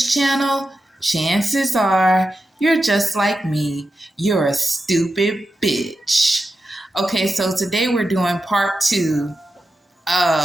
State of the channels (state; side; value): normal; both; correlation 0.90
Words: channel, chances are you're just like me. You're a stupid bitch. Okay, so today we're doing part 2